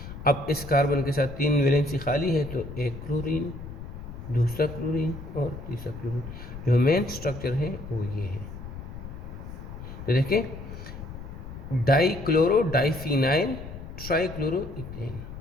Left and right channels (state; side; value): noise; left; rumble, 11 dB below the sound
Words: अब इस कार्बन के साथ 3 वैलेंसी खाली है, तो एक क्लोरीन, दूसरा क्लोरीन और तीसरा क्लोरीन। जो मेन स्ट्रक्चर है वो ये है। तो देखिए, डाइक्लोरो डाइफिनाइल ट्राइक्लोरो इथेन,